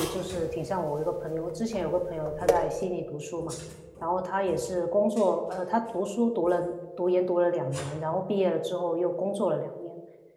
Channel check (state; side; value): identical; both; correlation 1.00